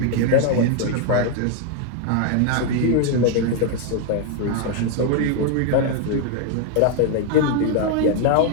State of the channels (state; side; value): different; both; correlation 0.00